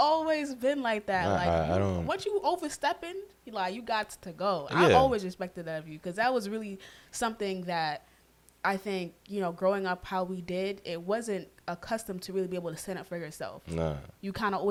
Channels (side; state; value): both; identical; correlation 1.00